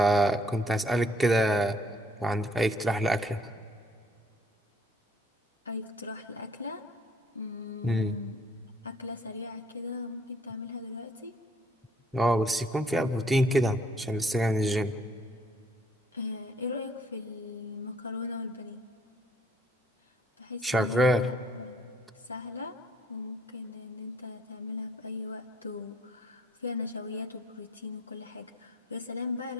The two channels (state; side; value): normal; both; correlation 0.64